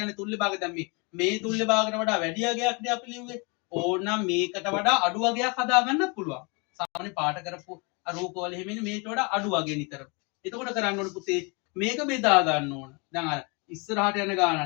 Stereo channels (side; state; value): right; quieter; 31.2 dB